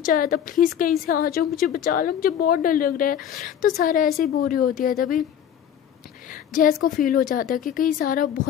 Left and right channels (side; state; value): right; quieter; 9.4 dB